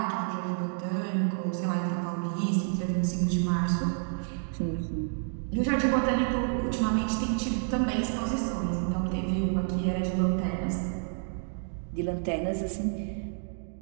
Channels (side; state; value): left; silent; digital silence